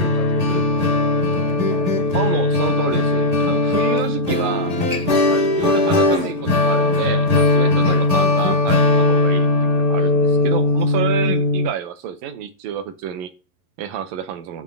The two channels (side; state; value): left; late; 11 ms